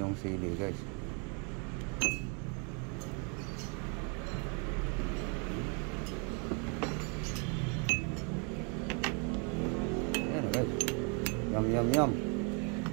sili guys. Ayan na guys. Yum yum yum.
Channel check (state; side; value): quieter; left; 36.2 dB